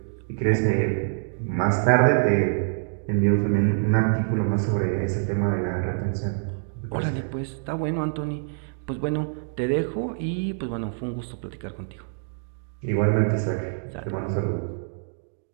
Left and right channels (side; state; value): left; silent; digital silence